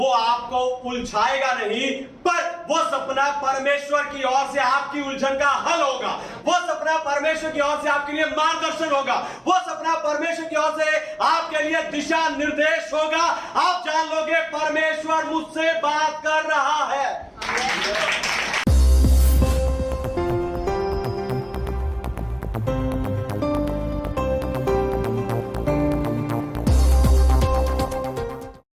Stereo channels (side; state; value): both; identical; correlation 1.00